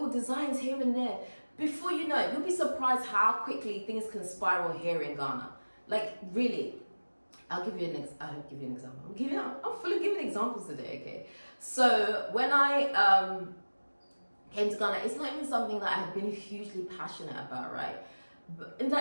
designs here and there. Before you know it, you'll be surprised how quickly things can spiral here in Ghana. Like, really. I'll give you an example. I'm full of giving examples today, okay? So when I came to Ghana, it's not even something that I have been hugely passionate about, right? But in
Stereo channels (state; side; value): inverted; both; correlation -1.00